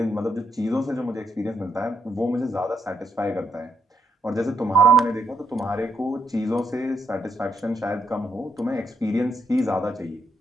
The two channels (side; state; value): both; normal; correlation 0.76